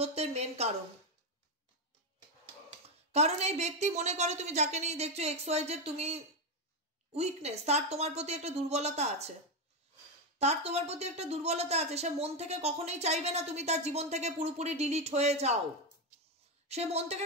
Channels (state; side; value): normal; both; correlation 0.09